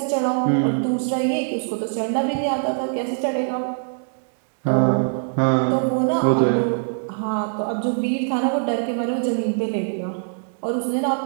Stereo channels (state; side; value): silent; left; digital silence